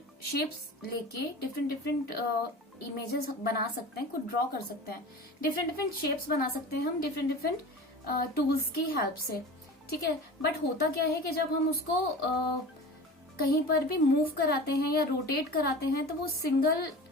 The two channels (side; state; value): both; normal; correlation 0.35